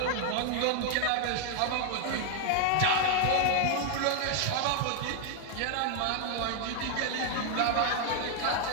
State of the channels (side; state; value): both; different; correlation 0.00